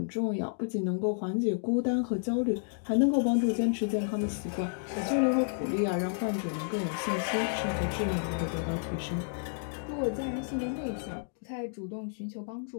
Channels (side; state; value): right; silent; digital silence